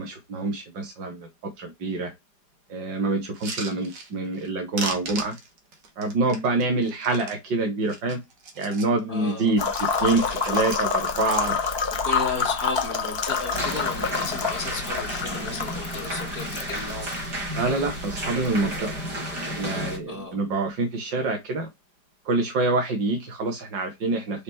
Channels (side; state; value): left; late; 4.9 ms